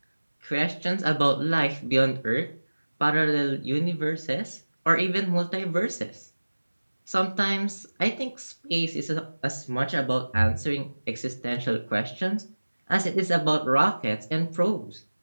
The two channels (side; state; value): both; inverted; correlation -1.00